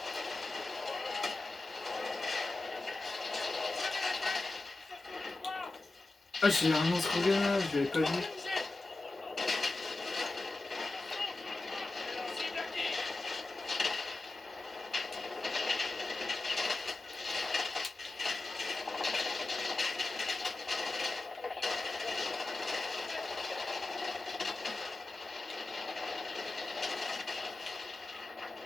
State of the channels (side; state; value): right; quieter; 3.1 dB